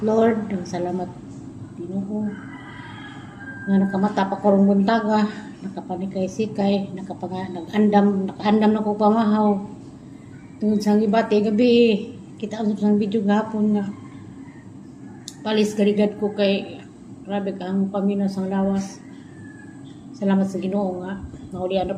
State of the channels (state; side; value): identical; both; correlation 1.00